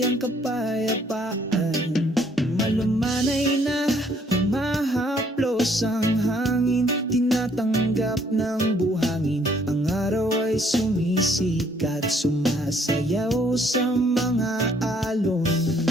kapayapaan. Malumanay na humahaplos ang hangin, tinatanggap ng buhangin. Ang araw ay sumisikat, sumasayaw sa mga alon.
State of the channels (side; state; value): both; normal; correlation 0.64